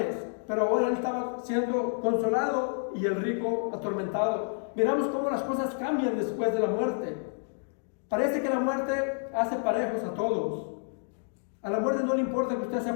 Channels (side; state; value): right; silent; digital silence